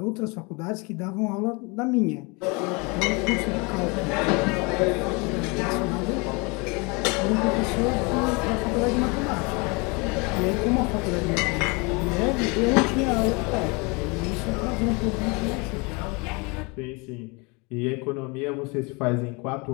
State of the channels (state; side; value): quieter; right; 29.1 dB